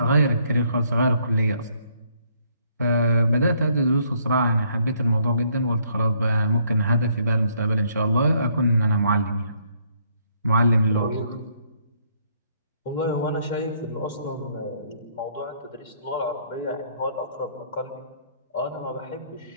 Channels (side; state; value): both; inverted; correlation -0.68